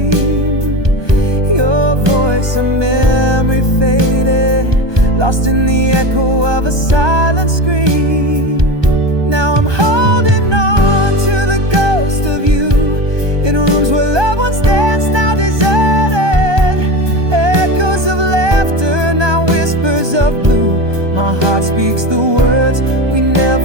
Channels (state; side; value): late; left; 1.2 ms